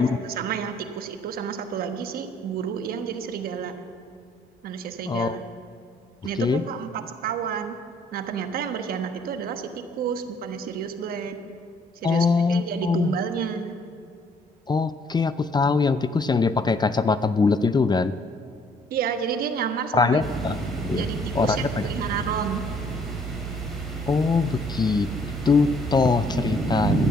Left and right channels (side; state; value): both; normal; correlation 0.63